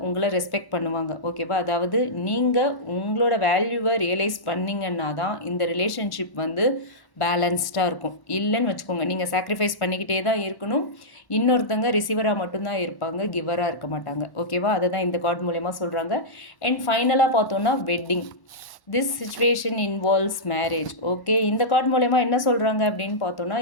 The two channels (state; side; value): late; right; 1.1 ms